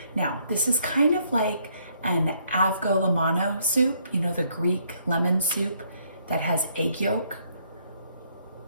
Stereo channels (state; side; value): inverted; both; correlation -0.69